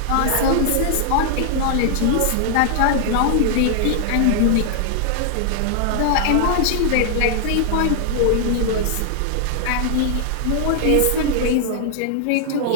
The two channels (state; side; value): different; both; correlation -0.01